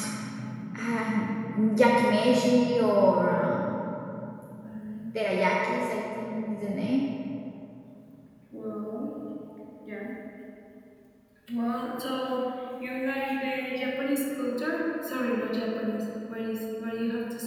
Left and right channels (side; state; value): both; identical; correlation 1.00